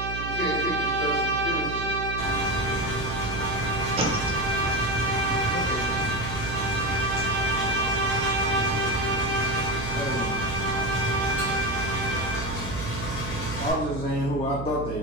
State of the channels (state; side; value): noise; right; hum, 7 dB below the sound